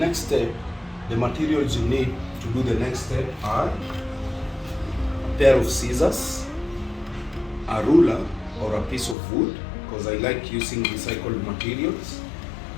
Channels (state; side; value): drops out; right; at 9.2 s